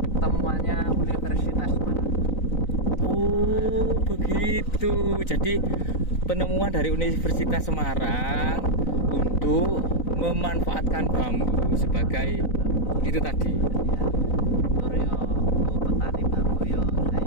temuannya Universitas Semarang. Oh begitu. Jadi penemuan dari Universitas Semarang untuk memanfaatkan bambu sebagai itu tadi. Ya, tur yo petani bambu yo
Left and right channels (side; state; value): right; late; 3.9 ms